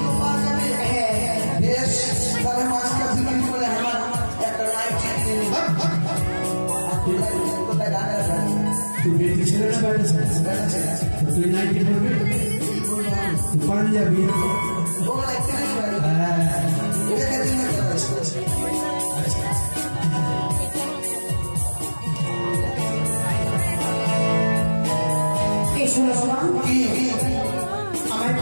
পাওয়া যাবে বেশ তাহলে মাছটা বিক্রি করে আমার একটা লাইফ তুই বেটি ছেলে না বেটা ছেলে তুই নাইটি পড়বি পাঞ্জাবি এই শোনো শোনো আমায়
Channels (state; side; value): inverted; both; correlation -1.00